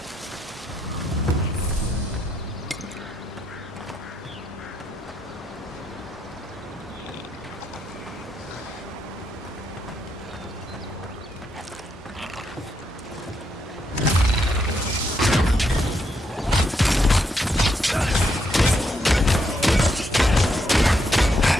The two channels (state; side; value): normal; both; correlation 0.78